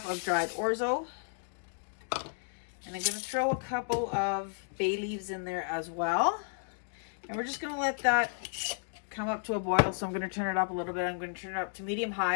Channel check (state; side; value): silent; right; digital silence